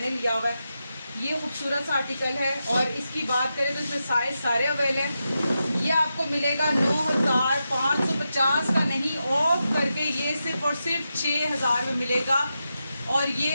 लिया हुआ है, ये खूबसूरत सा आर्टिकल है। और इसकी बात करें तो इसमें साइज सारे अवेल हैं। ये आपको मिलेगा 9550 का नहीं, ऑफ करके ये सिर्फ और सिर्फ 6000 में मिलेगा। और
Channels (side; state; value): both; inverted; correlation -0.88